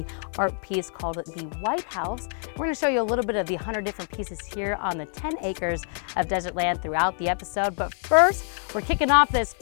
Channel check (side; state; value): right; silent; 55 dB below the other